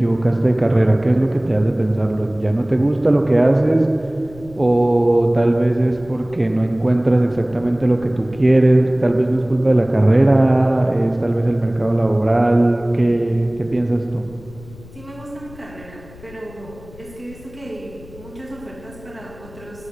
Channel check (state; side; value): noise; left; rumble, 21 dB below the sound